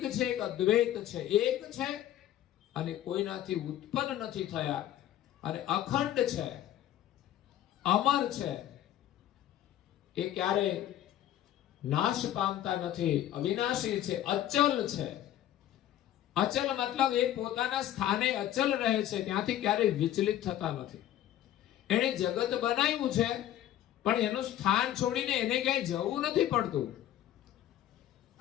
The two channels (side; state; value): right; quieter; 12.3 dB